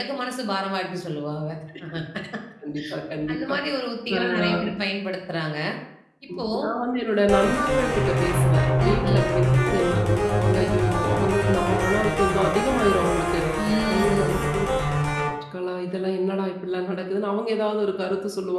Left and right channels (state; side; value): identical; both; correlation 1.00